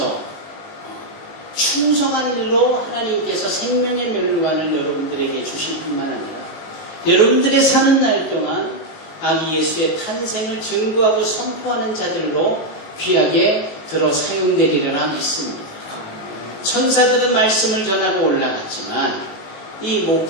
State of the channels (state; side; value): late; right; 19 ms